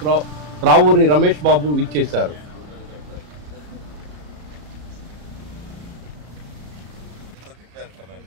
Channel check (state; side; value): late; left; 34 ms